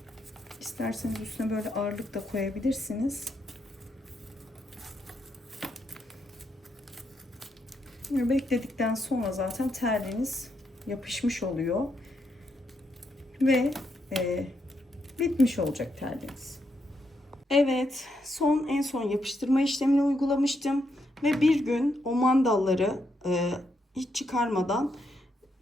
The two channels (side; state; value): both; normal; correlation 0.79